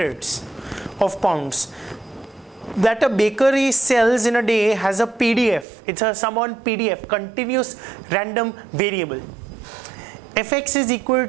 of pounds, that a bakery sells in a day has a PDF. It's a sum on PDF, continuous random variable. fx is equal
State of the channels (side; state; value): left; drops out; at 5.7 s